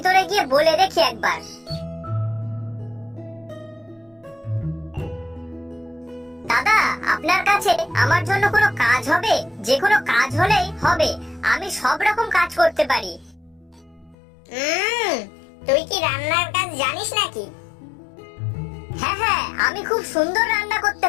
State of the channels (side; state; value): right; drops out; at 14.2 s